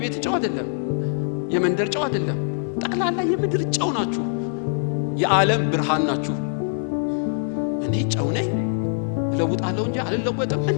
ጨው አይደለም፣ የመንደር ጨው አይደለም፣ ጠቅላላ የምድር ጨው ናችሁ። የዓለም ብርሃን ናችሁ። እኔ ጨው ነኝ ለውጣለሁ እንጂ አልለወጥም።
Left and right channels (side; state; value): right; silent; 63 dB below the other